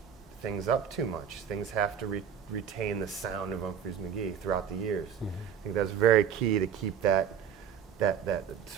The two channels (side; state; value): left; quieter; 8.0 dB